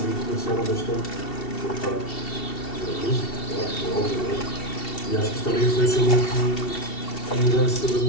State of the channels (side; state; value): right; late; 2.7 ms